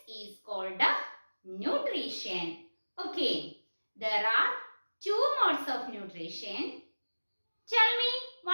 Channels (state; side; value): inverted; both; correlation -1.00